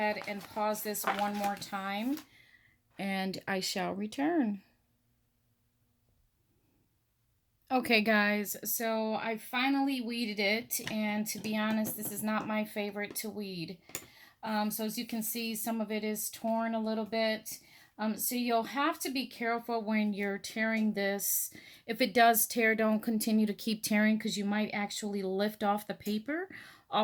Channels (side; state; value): both; identical; correlation 1.00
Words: and pause this one more time, and I shall return. Okay guys, so I finally weeded it, and to be honest, this is not my favorite to weed. So as you can see, some of it is torn a little bit. So you'll have to be careful when you're tearing this. If it does tear, don't continue to keep tearing because you might actually lift off the paper